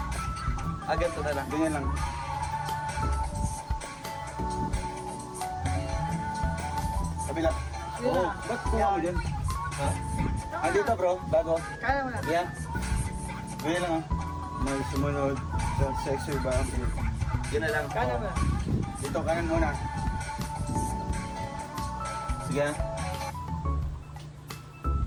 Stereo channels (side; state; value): both; identical; correlation 1.00